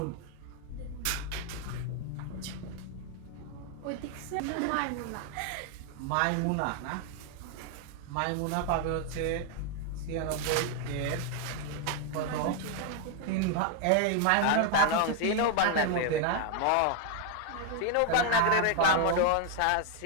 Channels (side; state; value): both; different; correlation 0.00